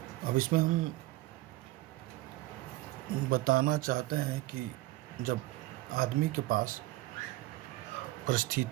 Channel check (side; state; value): left; quieter; 18.2 dB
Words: अब इसमें हम बताना चाहते हैं कि जब आदमी के पास